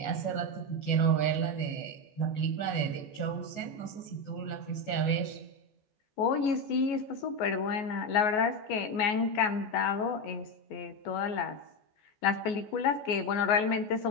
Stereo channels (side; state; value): right; late; 14 ms